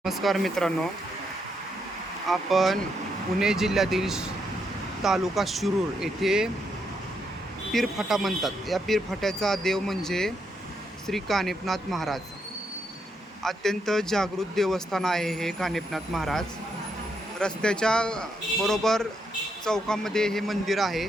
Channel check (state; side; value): normal; both; correlation 0.78